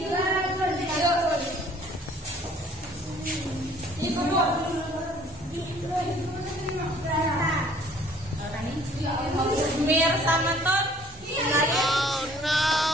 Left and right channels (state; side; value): normal; both; correlation 0.56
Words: Mir Samanton. Oh